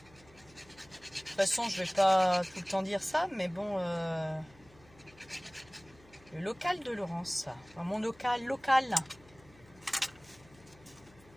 De toute façon, je vais pas tout le temps dire ça, mais bon... Le local de Laurence. Enfin, mon local.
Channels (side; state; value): left; noise; hum, 26 dB below the sound